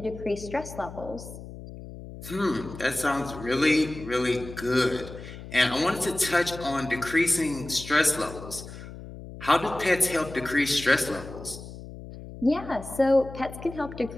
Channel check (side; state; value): left; noise; hum, 13 dB below the sound